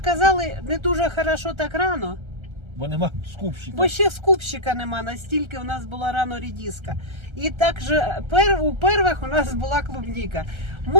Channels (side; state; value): left; late; 1.3 ms